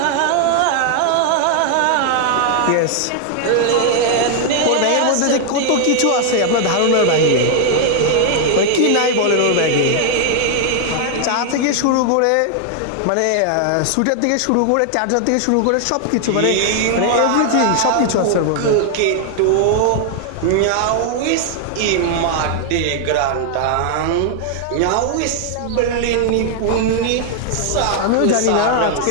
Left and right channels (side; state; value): both; different; correlation 0.00